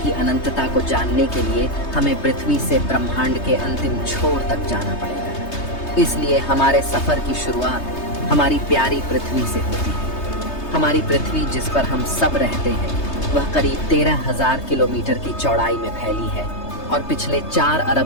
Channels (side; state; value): right; late; 3.2 ms